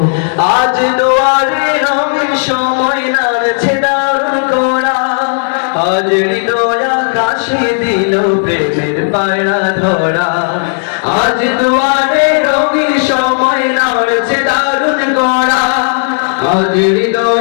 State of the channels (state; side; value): silent; right; digital silence